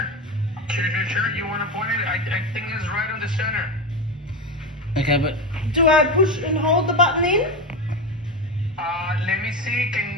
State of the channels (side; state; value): both; normal; correlation 0.18